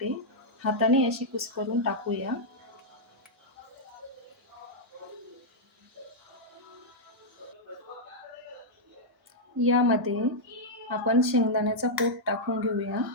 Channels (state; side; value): normal; both; correlation -0.06